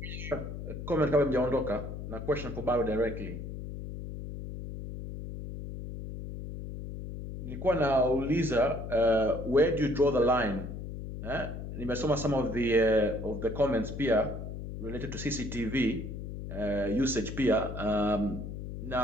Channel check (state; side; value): noise; left; hum, 8 dB below the sound